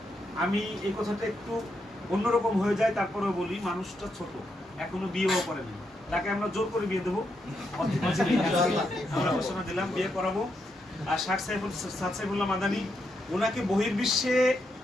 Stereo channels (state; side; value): normal; both; correlation 0.81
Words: আমি এই কথাটা একটু অন্যরকম হয়ে যায়, তারপরেও বলি, মানুষটা ছোট, এখনো বিয়েও করেনি, তাকে আমরা জোর করে বিয়ে দেবো, আমরা ঘোষণা দিলাম বিয়ে করাবো। আর শায়েখ সাদ সাইফুল্লাহ মাদানী, ওনাকে বহির্বিশ্বে